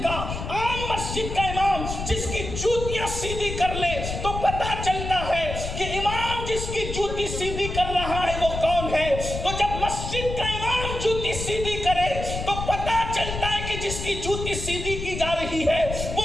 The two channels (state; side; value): noise; left; rumble, 6 dB below the sound